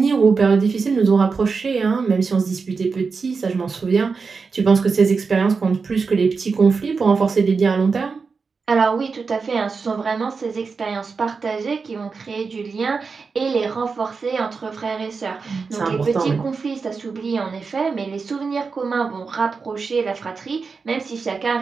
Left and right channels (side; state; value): left; quieter; 4.9 dB